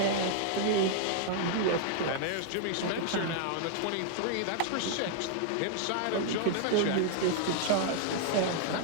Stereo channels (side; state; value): both; different; correlation 0.00